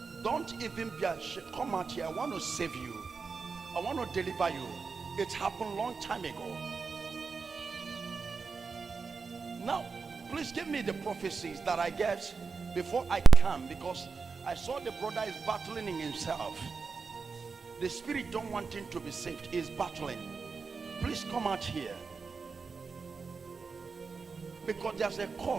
Don't even be ashamed. Come out here. I want to save you. I want to deliver you. It happened a long time ago. Now, please give me the prophecies that I get before I come, because I saw the brother is battling in himself. The spirit don't want him to be saved. He's battling. Please come out here. Because there's a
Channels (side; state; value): left; quieter; 4.9 dB